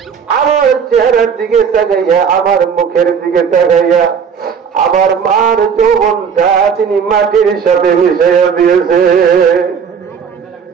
আমার চেহারার দিকে তাকাইয়া, আমার মুখের দিকে তাকাইয়া, আমার মার যৌবনটা তিনি মাটির সাথে মিশাইয়া দিয়েছে।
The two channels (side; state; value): left; quieter; 6.8 dB